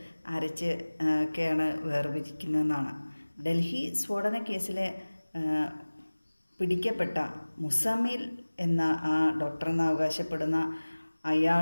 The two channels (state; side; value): inverted; both; correlation -1.00